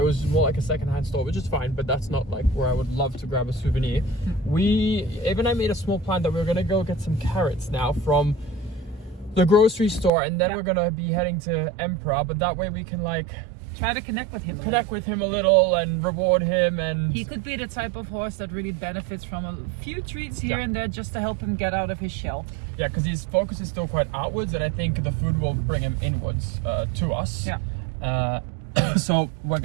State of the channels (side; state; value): left; drops out; at 10.1 s